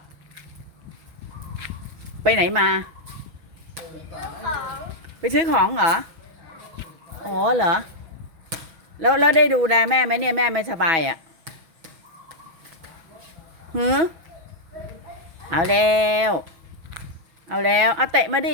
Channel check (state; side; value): late; left; 6.1 ms